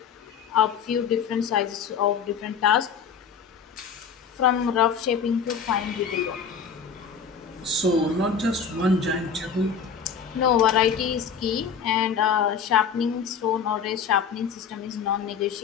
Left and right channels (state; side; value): quieter; right; 6.5 dB